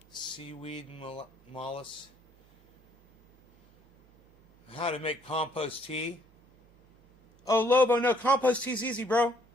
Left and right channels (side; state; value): right; noise; hum, 29 dB below the sound